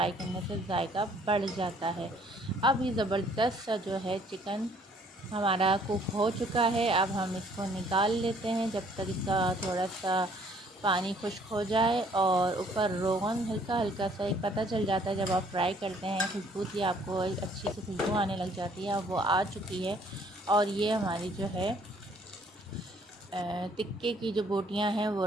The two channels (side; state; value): both; normal; correlation 0.61